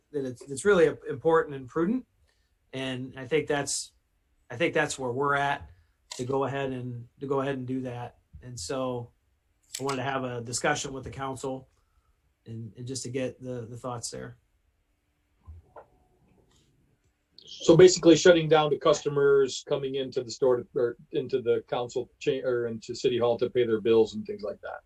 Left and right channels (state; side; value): identical; both; correlation 1.00